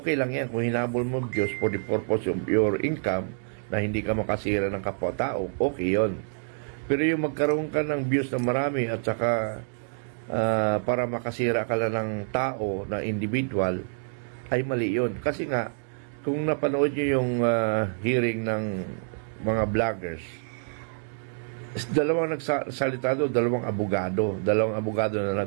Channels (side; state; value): left; silent; digital silence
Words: lang yan kung hinahabol mo views for the purpose of your income na hindi ka makasira ng kapwa-tao, okay yon. Pero yung magkaroon ka ng views na marami at saka para makasira ka lang ng tao na individual, ay mali yun. Kasi nga, kung napanood nyo yung hearing ng mga vloggers, dalawang nagsalita doon, dalawang abogado na